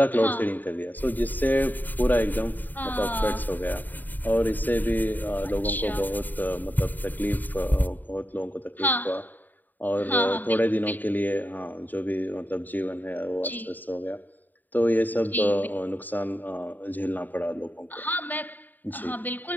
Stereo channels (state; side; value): late; right; 0.087 ms